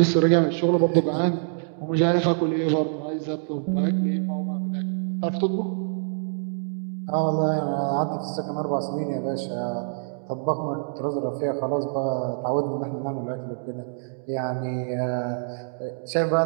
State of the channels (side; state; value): left; silent; digital silence